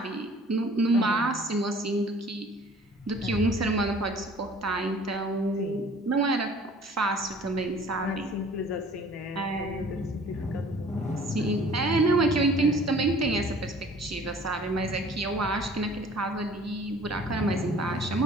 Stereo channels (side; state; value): both; normal; correlation 0.51